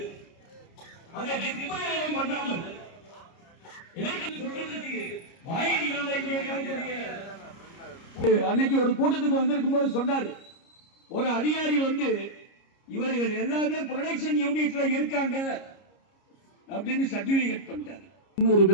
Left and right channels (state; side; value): late; right; 30 ms